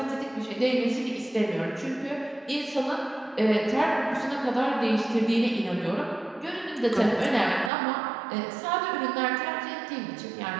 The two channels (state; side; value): drops out; left; at 7.7 s